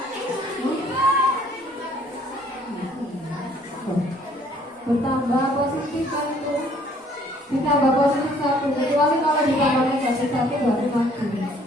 Bertambah positif kan itu, ditambah positif 1, kecuali kalau ditambah negatif 1 berarti mati.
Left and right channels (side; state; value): both; normal; correlation 0.60